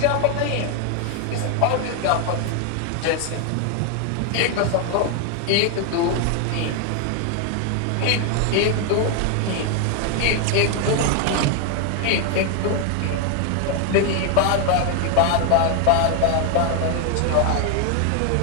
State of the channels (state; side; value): different; both; correlation 0.00